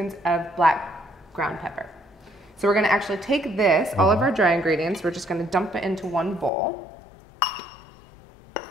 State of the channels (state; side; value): drops out; right; at 6.5 s